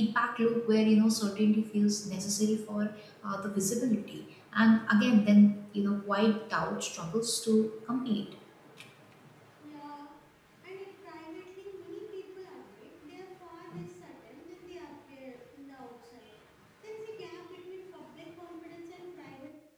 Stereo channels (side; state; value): both; identical; correlation 1.00